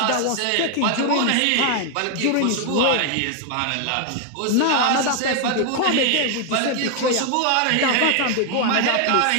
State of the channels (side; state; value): both; different; correlation 0.00